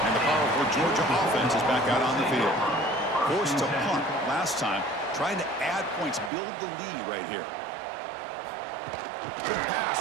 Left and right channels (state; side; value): drops out; left; at 6.3 s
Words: And the powerful Georgia offense is back out on the field. Forced to punt last time, trying to add points, build the lead right here. Good